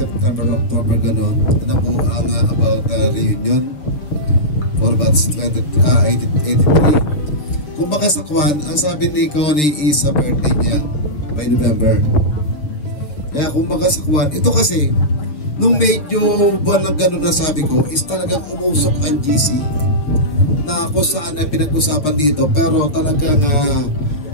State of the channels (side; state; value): right; late; 6.3 ms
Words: October, gano'n, nabuo ang about reunion for batch 83. Kung baka sa Kwan, ang sabi ni Connie is sa birthday niya by November. Kaya kung baka sa Kwan, ito kasi, nung medyo buwan ng gano'n na sabi ko, is talagang umusok ang GC. Na kung saan ay pinag-usapan dito, pero talagang